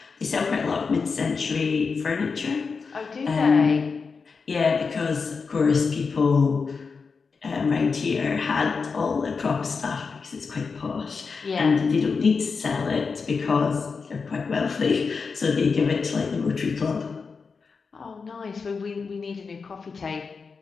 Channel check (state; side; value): quieter; right; 5.0 dB